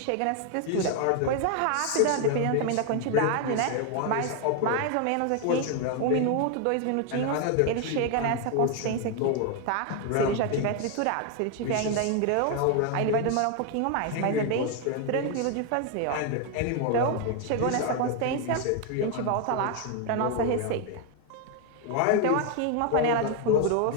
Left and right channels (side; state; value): both; different; correlation 0.01